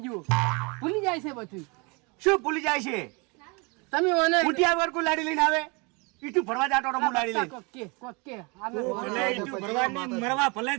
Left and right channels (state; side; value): quieter; left; 29.9 dB